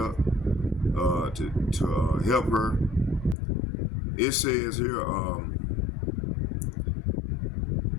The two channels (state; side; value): drops out; right; at 3.4 s